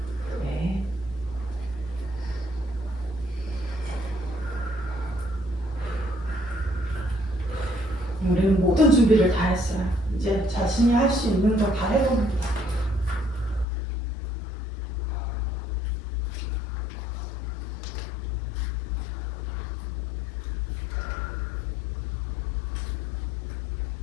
우리는 모든 준비를 다 했어요. 이제 자신이 할 수 있는 거 다 해봅니다.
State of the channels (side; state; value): right; drops out; at 13.7 s